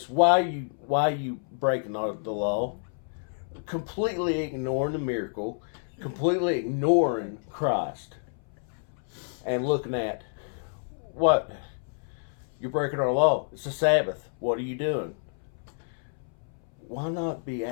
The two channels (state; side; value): silent; right; 59 dB below the other